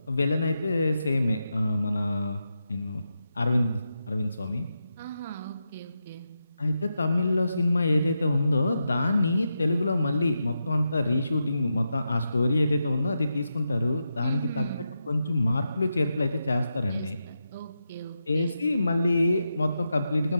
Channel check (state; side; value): inverted; both; correlation -0.87